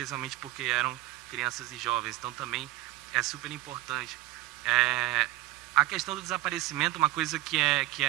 porque eram crianças e jovens. Então, também é super importante. A questão do desaparecimento, uma coisa que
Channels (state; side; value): quieter; left; 17.1 dB